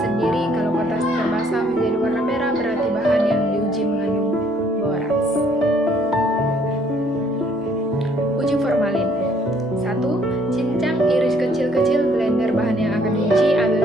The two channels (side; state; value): both; normal; correlation 0.64